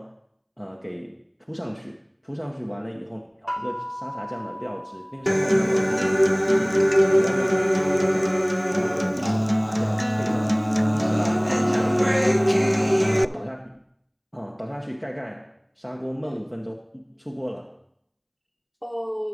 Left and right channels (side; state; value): both; identical; correlation 1.00